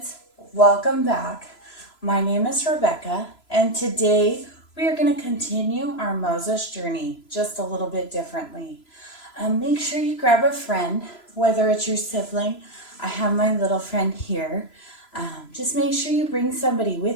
welcome back. My name is Rebecca, and today we are going to continue our Moses journey just a little bit differently. Make sure you grab a friend, whether it's your sibling. I have my little friend here. Just make sure you bring somebody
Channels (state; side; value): late; right; 3.0 ms